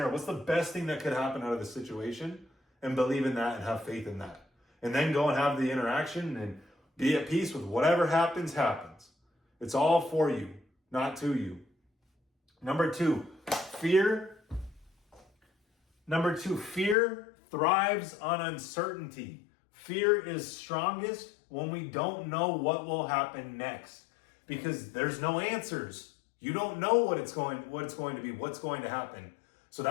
What's the best thing that could happen out of the situation? And believe in that and have faith in that. And then go and have the interaction and be at peace with whatever happens. It's all for you, not to you. Number two, fear thrives on uncertainty. Fear is strongest when we don't know what will happen next, because there's no answers. You don't know what it's going to be, what's going to happen. So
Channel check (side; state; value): right; drops out; at 16.9 s